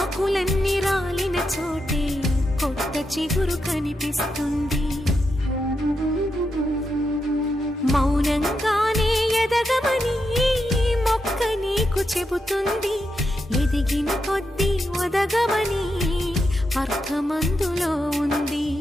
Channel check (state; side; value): normal; both; correlation 0.85